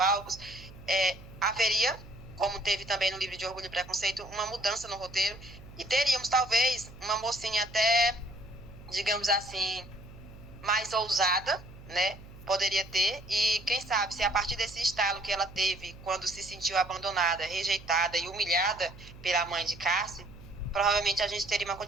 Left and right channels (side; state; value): right; noise; hum, 18 dB below the sound